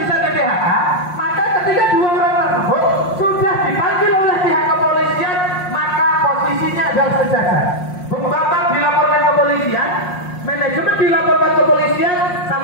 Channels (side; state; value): right; late; 5.6 ms